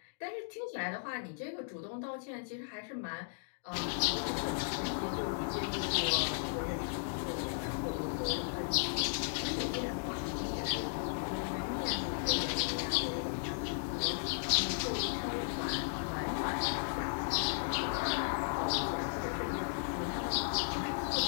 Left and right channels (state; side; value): silent; right; digital silence